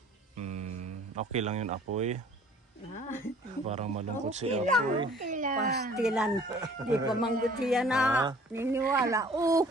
Okay lang yun, Apoy. Parang malungkot si Okay Apoy. Okay lang. Pastilan. Di pa manggutiya na. Niniwala.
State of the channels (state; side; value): normal; both; correlation 0.52